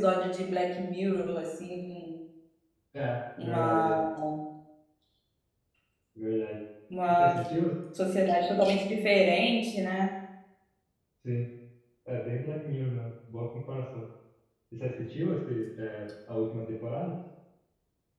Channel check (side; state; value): both; identical; correlation 1.00